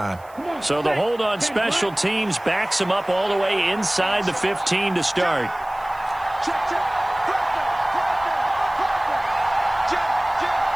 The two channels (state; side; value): noise; right; hiss, 27 dB below the sound